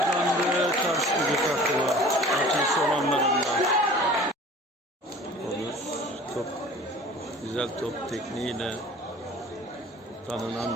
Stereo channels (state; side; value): normal; both; correlation 0.45